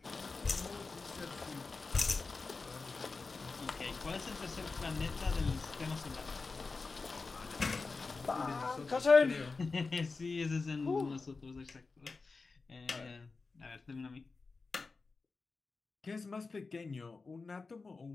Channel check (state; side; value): quieter; right; 4.1 dB